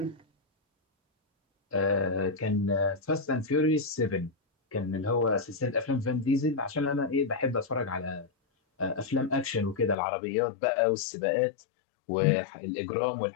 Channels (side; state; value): right; drops out; at 10.0 s